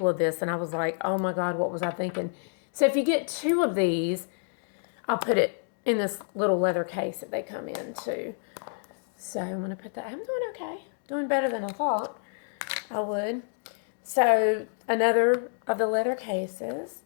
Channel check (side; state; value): right; silent; digital silence